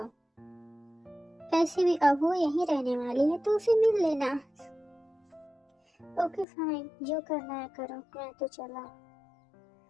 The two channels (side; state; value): right; drops out; at 6.5 s